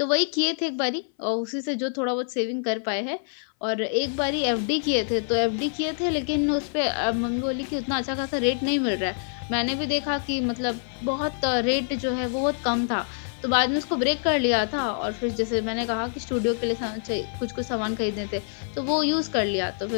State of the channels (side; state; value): right; silent; 58 dB below the other